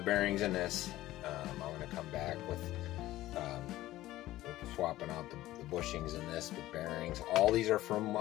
bearings in this. I'm going to come back with swapping out the bushings in this with bearings. All these are from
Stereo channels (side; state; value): right; quieter; 15.8 dB